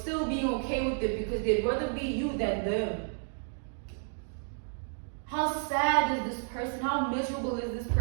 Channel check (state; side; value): silent; left; 57 dB below the other